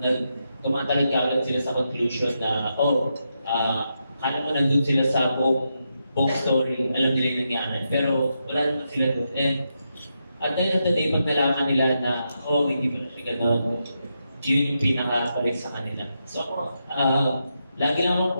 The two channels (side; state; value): both; inverted; correlation -0.84